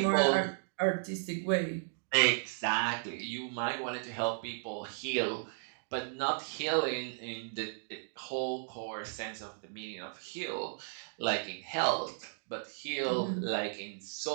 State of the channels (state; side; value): silent; left; digital silence